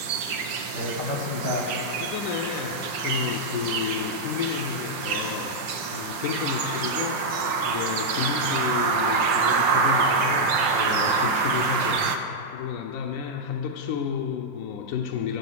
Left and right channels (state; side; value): late; left; 5.6 ms